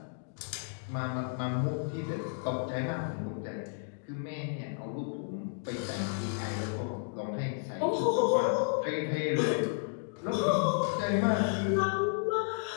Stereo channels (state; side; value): silent; right; digital silence